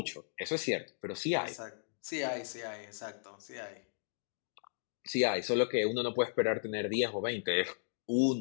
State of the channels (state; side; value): silent; right; digital silence